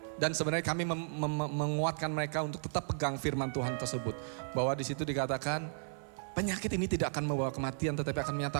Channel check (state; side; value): silent; left; 55 dB below the other